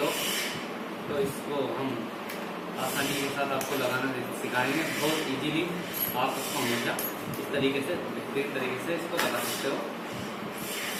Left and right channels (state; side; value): identical; both; correlation 1.00